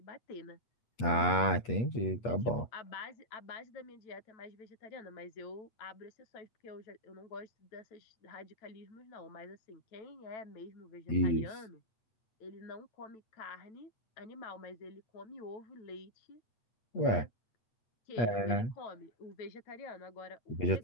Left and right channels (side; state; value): right; late; 8.4 ms